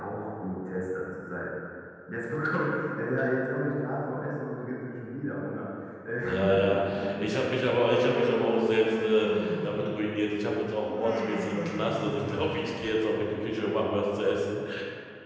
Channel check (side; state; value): both; identical; correlation 1.00